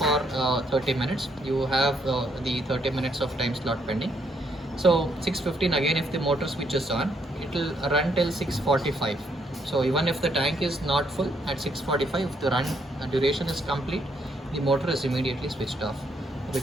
30 minutes. You have the 30 minutes of time slot pending. So 6:15 again, if the motor switches on, it will run till 6:45. So even if the tank is not full at 6:45, if the run duration is complete, the motor is immediately switched off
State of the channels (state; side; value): normal; both; correlation 0.72